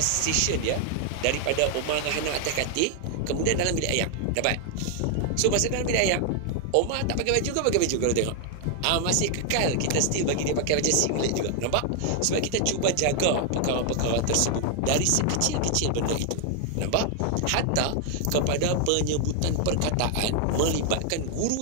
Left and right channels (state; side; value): different; both; correlation 0.00